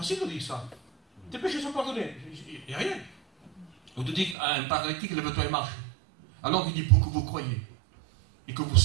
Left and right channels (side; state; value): left; drops out; at 4.4 s